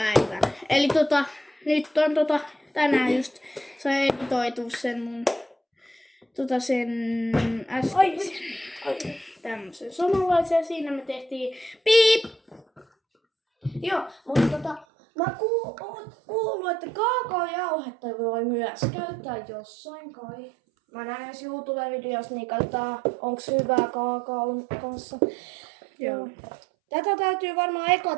Eli nyt on tänään just se editoitu sen mun sen äskeisen tämmösen samanlaisen. Siinä me tehtiin piip. Joo, mutta mä kuullut, että kaakaojauhetta voi myös käyttää jossain kai. Mä näen jos YouTube-videossa, niin katsotaan, onks hyvää kaakaon kanssa. Joo. Tätä täytyy varmaan eka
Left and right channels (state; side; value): drops out; left; at 14.9 s